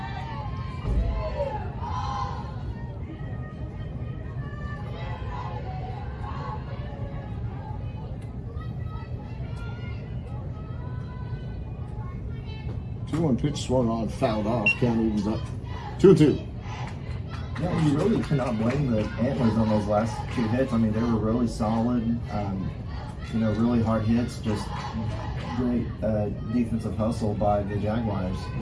One pitch swung on, fouled off. Count evens up 2-2. Yeah, you really cannot blame the Antlers on those last 2 hits. I mean, they were really solid. Really hard hits. Just great defensive hustle by the Jaguars.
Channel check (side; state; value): both; identical; correlation 1.00